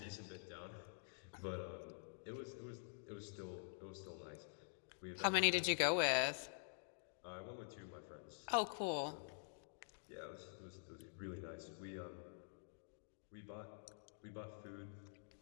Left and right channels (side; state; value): right; silent; digital silence